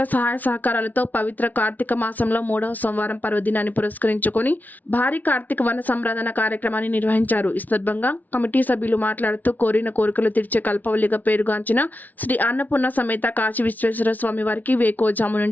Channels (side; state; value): right; late; 0.079 ms